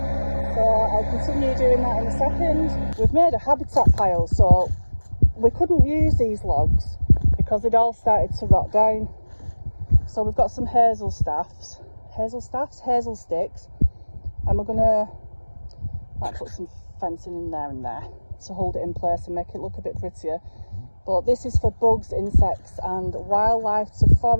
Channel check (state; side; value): inverted; both; correlation -1.00